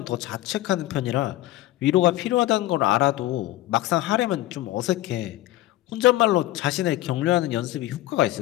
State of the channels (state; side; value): quieter; right; 15.9 dB